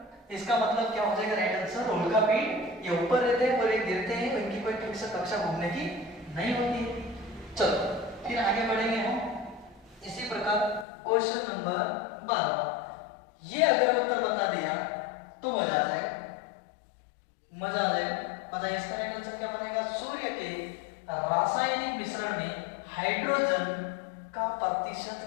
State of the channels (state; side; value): drops out; right; at 10.9 s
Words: इसका मतलब क्या हो जाएगा राइट आंसर? उल्का पिंड ये ऊपर रहते हैं और ये गिरते हैं, इनकी कोई फिक्स कक्षा घूमने की नहीं होती है। चलो फिर आगे बढ़ेंगे हम इसी प्रकार। Question number 12। ये अगर उत्तर बता दिया तो मजा आ जाएगा, मजा आ जाएगा। बताइए इसका राइट आंसर क्या बनेगा? सूर्य के रासायनिक मिश्रण में हाइड्रोजन का प्रतिशत